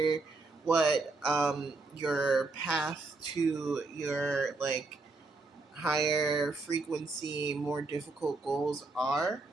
what your path to your like higher frequency, more difficult goals are,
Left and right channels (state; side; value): quieter; left; 3.5 dB